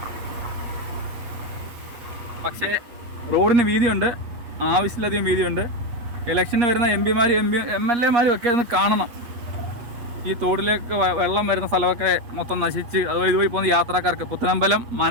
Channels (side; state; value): left; late; 8.7 ms